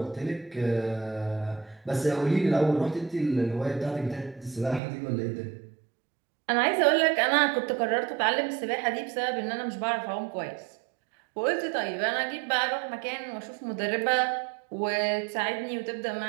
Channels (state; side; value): drops out; left; at 4.8 s